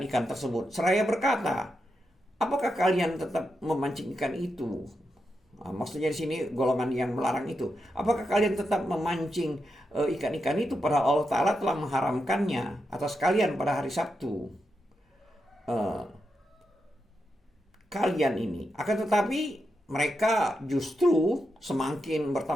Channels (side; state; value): both; normal; correlation 0.86